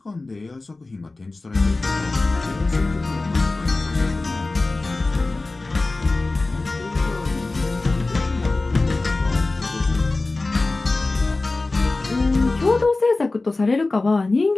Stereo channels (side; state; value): right; quieter; 3.3 dB